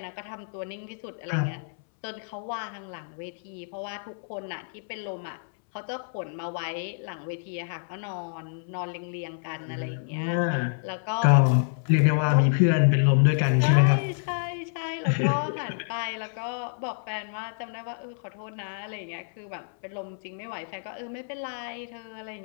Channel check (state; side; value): silent; right; 59 dB below the other